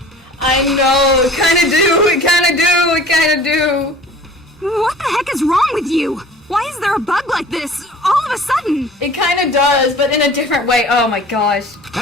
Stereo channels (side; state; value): both; normal; correlation 0.45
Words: I know, it kinda do, it kinda do. What the heck is wrong with you? Why is there a bug like this all of a sudden? It kinda does, but in a different way. Oh my gosh.